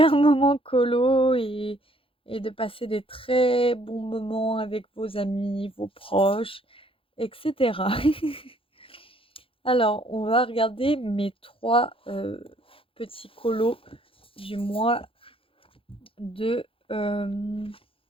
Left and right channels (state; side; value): late; right; 0.26 ms